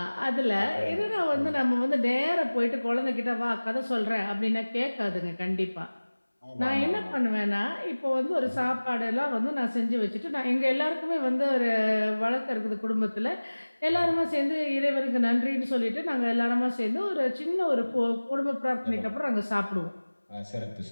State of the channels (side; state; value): both; inverted; correlation -1.00